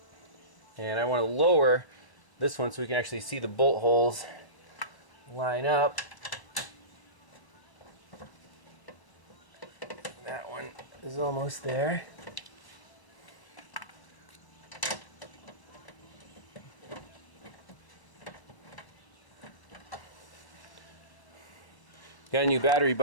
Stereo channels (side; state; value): right; late; 1.0 ms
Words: and I want to lower this one so we can actually see the bolt holes line up. That one is almost there. Got a new battery,